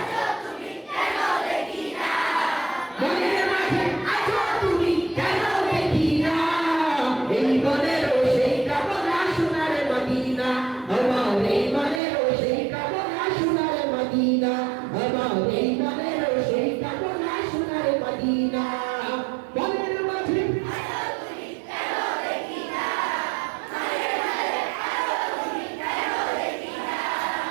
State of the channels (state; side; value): drops out; left; at 12.0 s